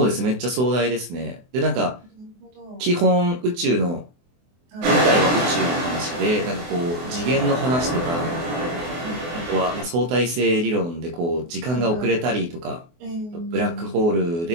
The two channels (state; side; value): late; left; 24 ms